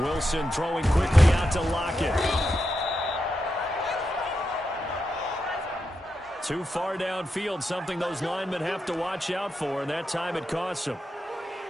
Wilson throwing quickly out to Lockett. Too far downfield, something those linemen have to watch out for, and that time it costs them.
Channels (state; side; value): normal; both; correlation 0.87